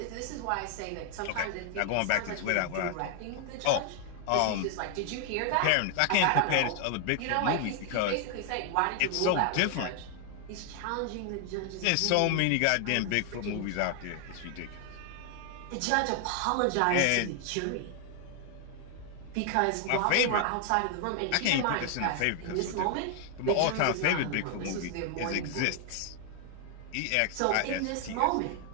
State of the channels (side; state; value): both; different; correlation 0.00